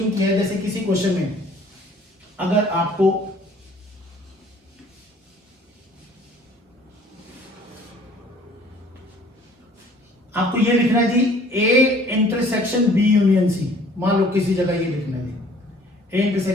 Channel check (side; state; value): both; normal; correlation 0.55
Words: किया है, जैसे किसी क्वेश्चन में अगर आपको ये लिखना है जी, A intersection B union C. मान लो किसी जगह ये लिखना है जी, A